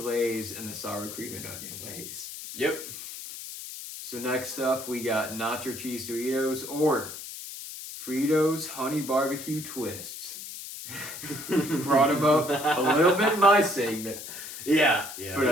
and the sour cream and onion Lay's. Yep. So next up, we got nacho cheese Doritos or Fritos honey barbecue twists. Brought them up a little bit in my segment. Yeah.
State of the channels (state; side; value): noise; left; hiss, 10 dB below the sound